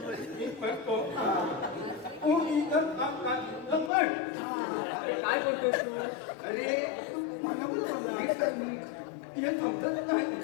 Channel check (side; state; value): right; drops out; at 3.9 s